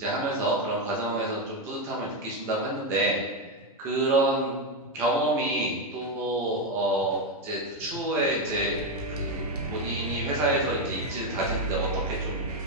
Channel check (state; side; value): normal; both; correlation 0.07